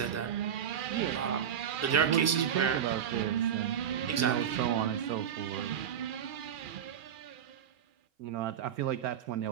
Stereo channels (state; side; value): quieter; left; 8.8 dB